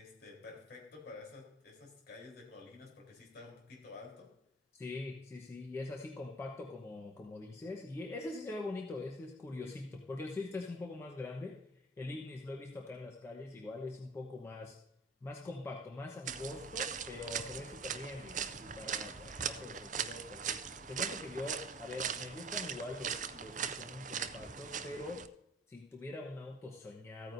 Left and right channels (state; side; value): normal; both; correlation 0.45